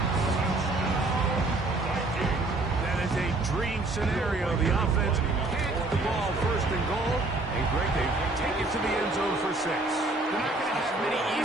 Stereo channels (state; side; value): quieter; left; 3.0 dB